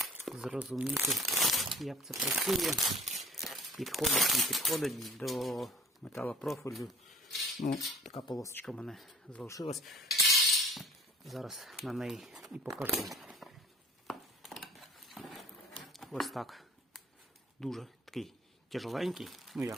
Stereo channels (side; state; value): both; normal; correlation 0.49